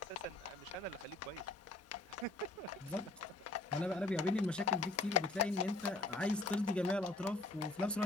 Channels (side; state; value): right; quieter; 3.1 dB